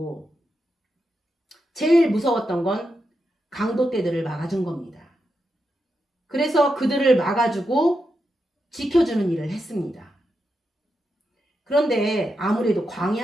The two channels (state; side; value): normal; both; correlation 0.86